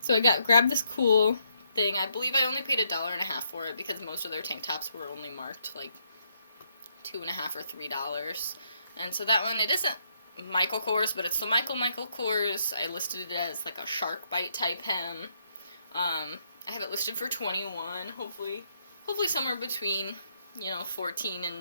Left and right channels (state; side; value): inverted; both; correlation -0.75